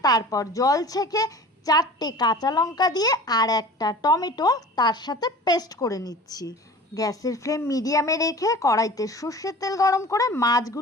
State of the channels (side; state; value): both; normal; correlation 0.40